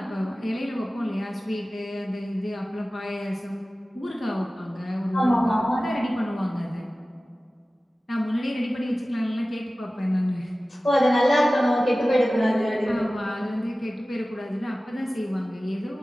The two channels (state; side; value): normal; both; correlation 0.97